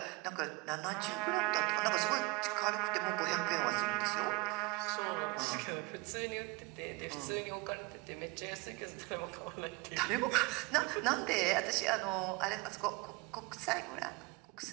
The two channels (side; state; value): left; quieter; 25.0 dB